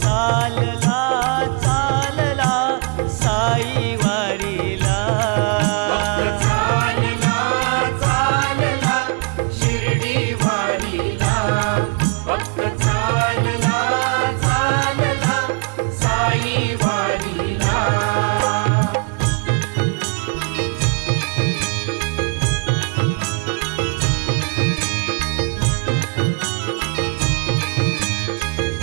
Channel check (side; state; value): left; quieter; 35.3 dB